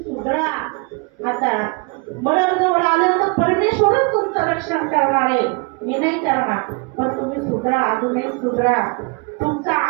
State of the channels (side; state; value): left; quieter; 30.3 dB